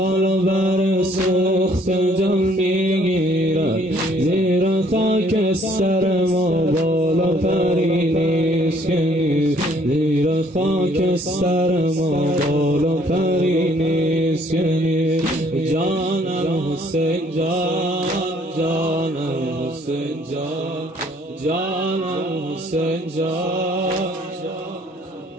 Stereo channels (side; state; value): both; normal; correlation 0.62